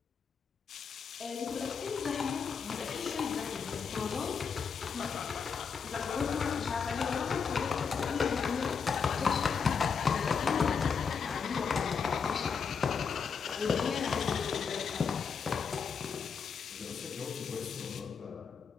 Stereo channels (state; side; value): quieter; right; 6.0 dB